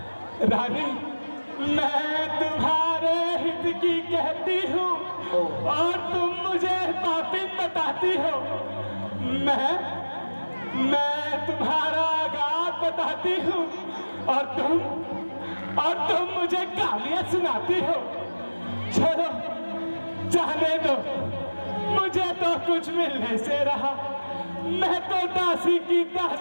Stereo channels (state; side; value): inverted; both; correlation -1.00